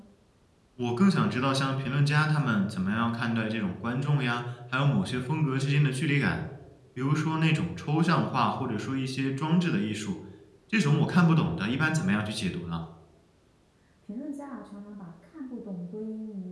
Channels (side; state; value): both; identical; correlation 1.00